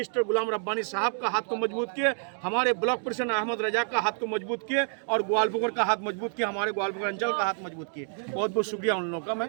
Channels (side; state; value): left; silent; 59 dB below the other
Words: गुलाम रब्बानी साहब का हाथ को मजबूत किए, हमारे ब्लॉक प्रेसिडेंट अहमद रजा का हाथ को मजबूत किए और ग्वालपुर का हाथ मजबूत किया, हमारे ग्वालपुर अंचल का हाथ मजबूत किए। बहुत बहुत शुक्रिया उन लोगों का,